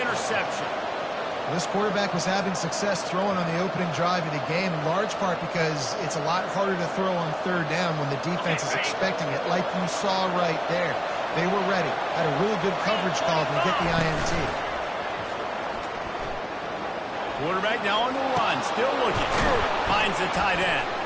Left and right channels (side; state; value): both; identical; correlation 1.00